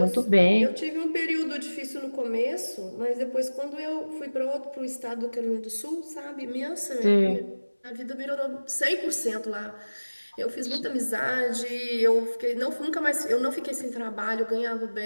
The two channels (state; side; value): inverted; both; correlation -1.00